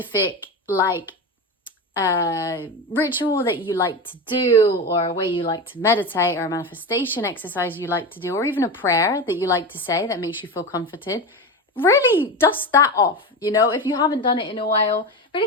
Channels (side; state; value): both; normal; correlation 0.22